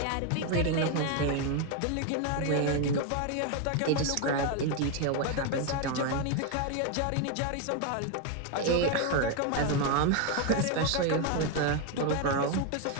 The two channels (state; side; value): different; both; correlation 0.01